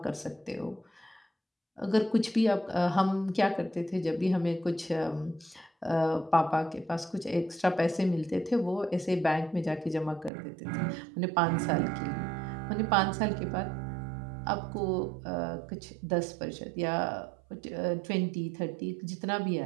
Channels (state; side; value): drops out; left; at 10.3 s